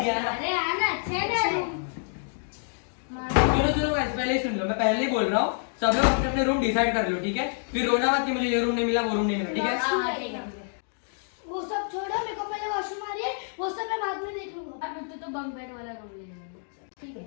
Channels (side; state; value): right; silent; 60 dB below the other